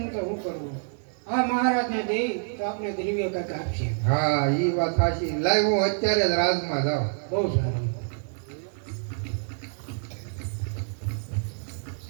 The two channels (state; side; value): silent; left; 60 dB below the other